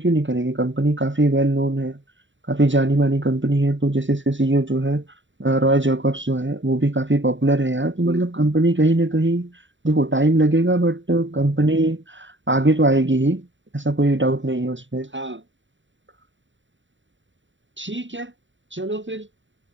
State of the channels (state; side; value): late; left; 0.55 ms